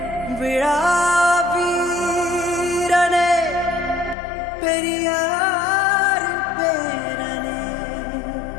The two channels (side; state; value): right; drops out; at 4.2 s